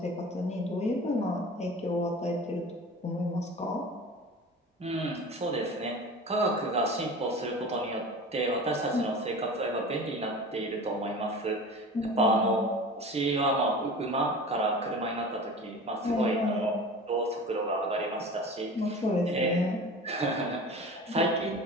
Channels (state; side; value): normal; both; correlation 0.36